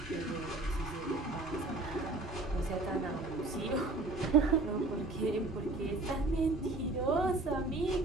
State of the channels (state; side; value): quieter; left; 3.0 dB